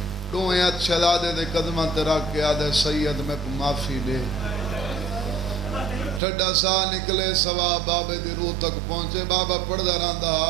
دوئیں شہزادے دے قدمہ تے رکھ کے آدھے سید میں کو معافی دے ٹھڈا سا نکلے سوا بابے دی روح تک پہنچے بابا پڑھدا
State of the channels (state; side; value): drops out; left; at 6.2 s